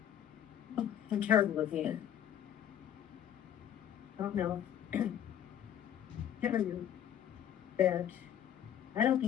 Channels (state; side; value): quieter; right; 10.0 dB